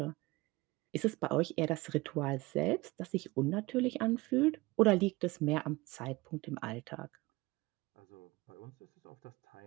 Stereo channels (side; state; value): left; quieter; 22.1 dB